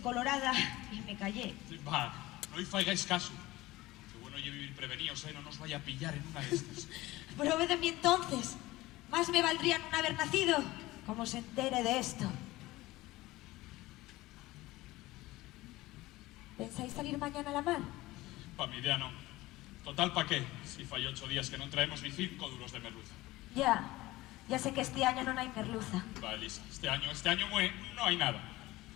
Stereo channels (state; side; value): quieter; right; 18.5 dB